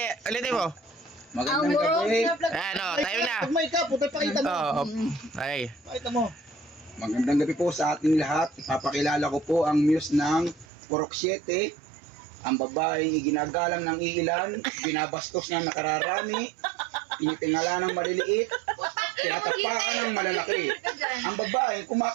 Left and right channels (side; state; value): left; drops out; at 10.7 s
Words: ulitin mo. Magandang gabi. Ano, tayo na. Pag may ka, puta pakita mo. Oo. Ay. Pakita mo. Magandang gabi po sa ating lahat. Ipapakilala ko po ang muse ng Purok 7. Ang babaeng iginagalang ng iilan, binabastos ng nakararami, tinitingala ng maliliit, tinatapakan ng malalaki. Ang babaeng